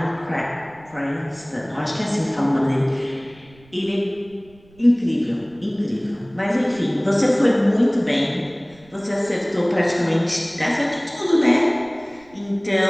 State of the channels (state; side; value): noise; right; rumble, 27 dB below the sound